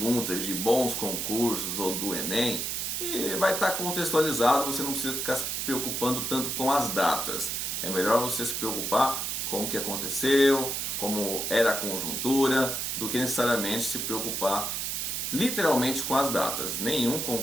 de bons concursos ou do Enem, vai estar contextualizado, você não precisa ficar se preocupando tanto com as datas. É melhor você se preocupar com o que aconteceu, como era a conjuntura, do que necessariamente se preocupar literalmente com as datas. Nenhum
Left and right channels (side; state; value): right; noise; hiss, 2 dB below the sound